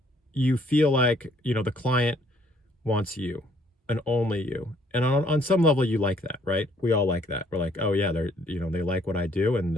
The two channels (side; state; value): both; normal; correlation 0.64